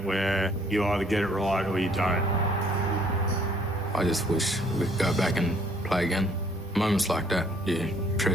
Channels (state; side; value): normal; both; correlation 0.61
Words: where you either get it right or you don't. I just wish we could go back and play again. Moments like that, you